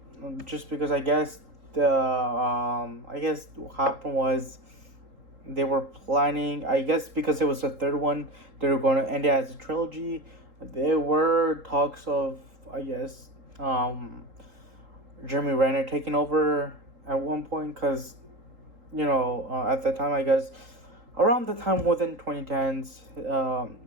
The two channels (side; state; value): left; late; 3.8 ms